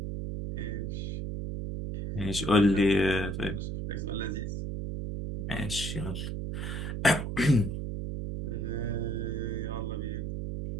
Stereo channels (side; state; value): right; noise; hum, 3 dB below the sound